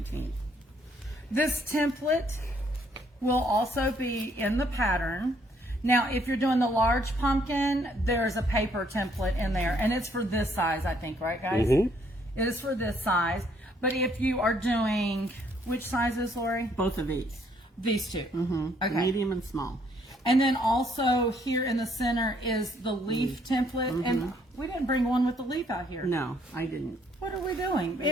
This template will also be in the pattern. Now, if you're doing the large pumpkin, there's a paper template in there, and it's for this size, I think, right, guys? It is for this size. But if you are doing, which sizes, Lori? Both of these, These two. Okay. medium and small. And then also here in the center is the leaf template. And we didn't bring one with the leaf out here. No, I didn't. What are we doing?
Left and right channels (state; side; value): normal; both; correlation 0.67